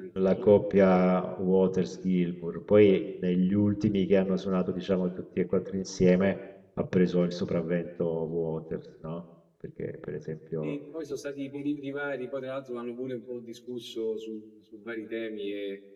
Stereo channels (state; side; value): identical; both; correlation 1.00